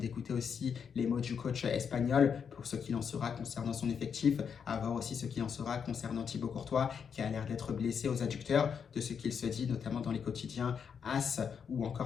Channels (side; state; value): right; quieter; 6.9 dB